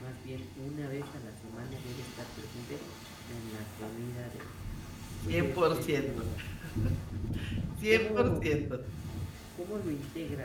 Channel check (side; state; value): both; identical; correlation 1.00